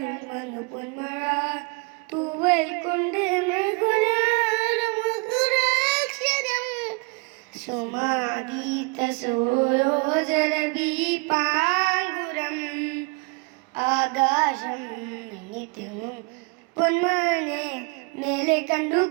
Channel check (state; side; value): quieter; left; 30.1 dB